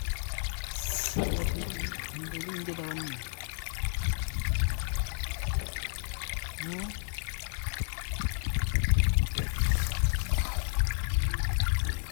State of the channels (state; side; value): silent; right; digital silence